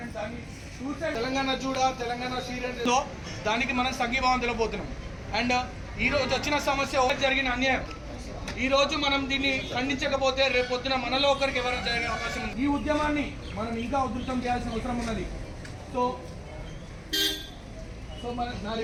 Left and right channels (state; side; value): identical; both; correlation 1.00